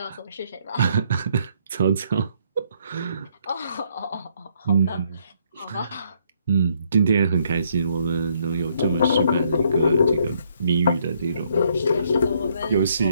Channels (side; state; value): both; inverted; correlation -0.70